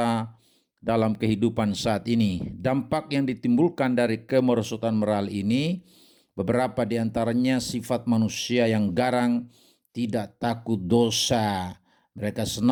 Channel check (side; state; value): both; identical; correlation 1.00